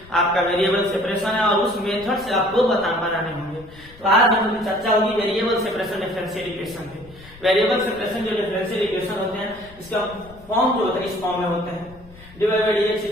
आपका वेरिएबल सेपरेशन है, और उस मेथड से आपको बनाने होंगे। तो आज हम लोग चर्चा होगी वेरिएबल सेपरेशन डिफरेंशियल इक्वेशन पे। वेरिएबल सेपरेशन जो डिफरेंशियल इक्वेशन होते हैं, इसका फॉर्म जो होता है इस फॉर्म में होते हैं dy by dx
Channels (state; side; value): noise; left; rumble, 22 dB below the sound